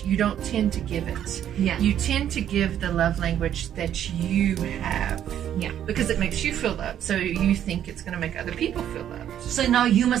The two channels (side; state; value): left; quieter; 10.4 dB